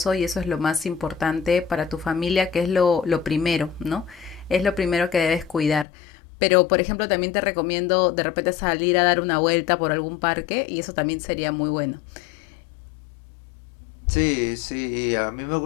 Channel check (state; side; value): drops out; right; at 5.9 s